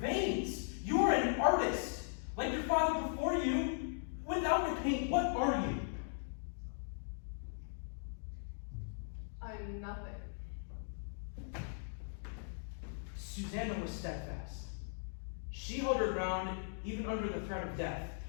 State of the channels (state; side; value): silent; right; digital silence